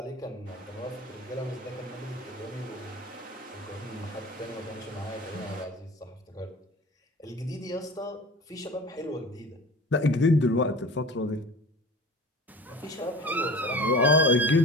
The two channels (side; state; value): both; normal; correlation 0.39